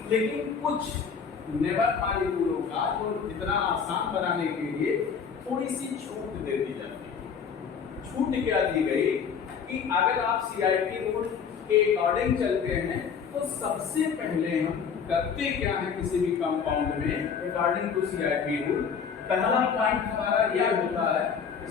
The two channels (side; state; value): right; quieter; 6.6 dB